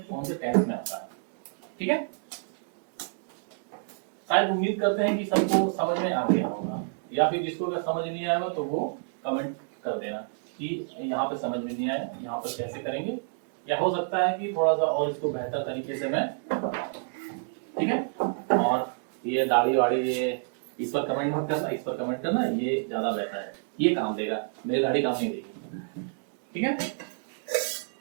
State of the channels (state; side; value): silent; left; digital silence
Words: कौन से टेंस में आता है। ठीक है, शायद उम्मीद करते हैं कि सबको समझ में आ गया होगा, या फिर जिसको अगर समझ नहीं आएगा तो वो कमेंट कर देना कि यहाँ पे समझ में नहीं आया, यहाँ पर कैसे करेंगे, या हो सकता है कि थोड़ा सा और इसको बेहतर तरीके से मैं बताऊं। ठीक है, और ये दाढ़ी वाड़ी ये इस पर कमेंट मत करना, इस पर कमेंट करना, ये ज्यादा बेहतर है, ये काम देगा, मेरी दाढ़ी काम नहीं देगी। ठीक है,